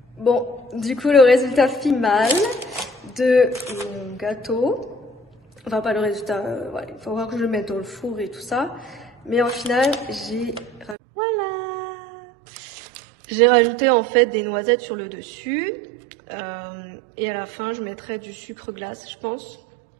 Bon, du coup, le résultat final de mon gâteau, enfin pas le résultat, ouais, il faut voir que je le mette dans le four et tout ça, mais en final, j'ai rajouté en fait des noisettes sur le dessus, et à la fin, je mettrai du sucre glace, je pense,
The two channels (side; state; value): left; drops out; at 11.0 s